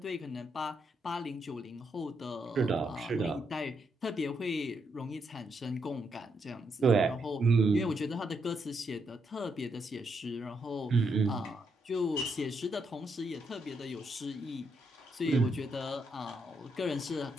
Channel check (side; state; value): both; normal; correlation 0.78